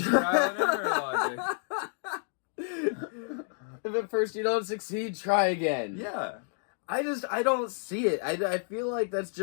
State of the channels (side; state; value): right; silent; 58 dB below the other